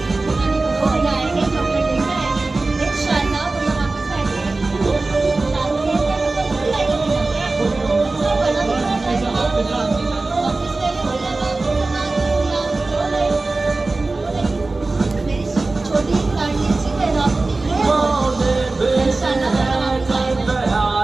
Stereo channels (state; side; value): quieter; left; 3.4 dB